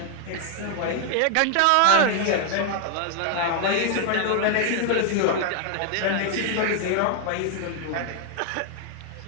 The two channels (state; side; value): different; both; correlation 0.00